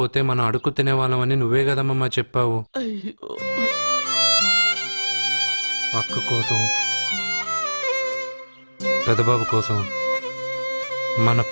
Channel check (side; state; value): both; inverted; correlation -1.00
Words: మనం అడుగు తినేవాళ్ళమని నువ్వే కదమ్మా చెప్పావు. అయ్యో అక్క కోసం, పెదబాబు కోసం, మన